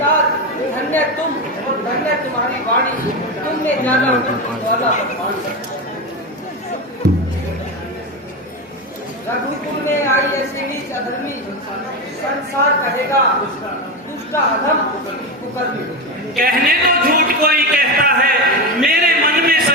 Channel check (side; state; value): both; normal; correlation 0.16